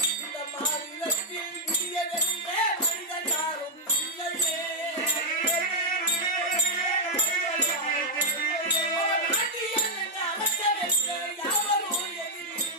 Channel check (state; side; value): normal; both; correlation -0.02